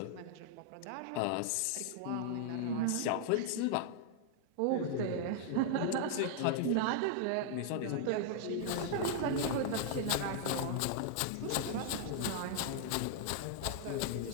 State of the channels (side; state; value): both; different; correlation 0.00